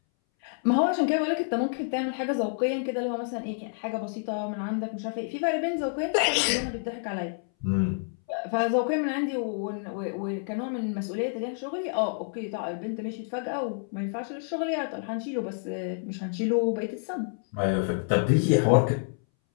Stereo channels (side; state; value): right; silent; 59 dB below the other